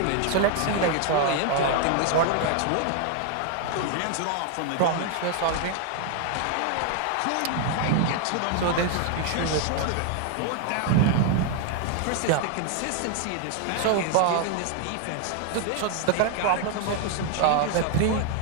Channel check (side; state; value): both; different; correlation 0.00